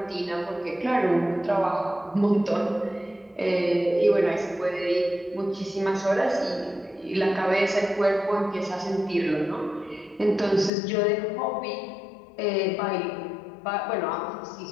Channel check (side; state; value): right; drops out; at 10.7 s